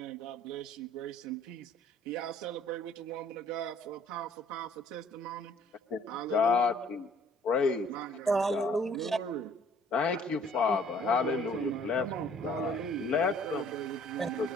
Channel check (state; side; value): normal; both; correlation 0.57